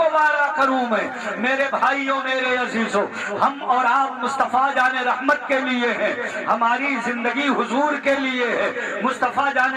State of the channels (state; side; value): identical; both; correlation 1.00